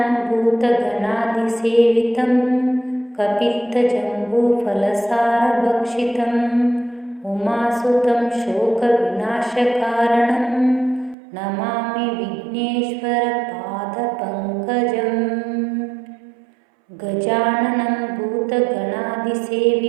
भूतगणादिसेवितं कपित्थजम्बूफलसारभक्षितम् उमासुतं शोकविनाशकारणं Namami विघ्नेश्वरपादपङ्कजम् गजाननं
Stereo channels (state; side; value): drops out; left; at 11.2 s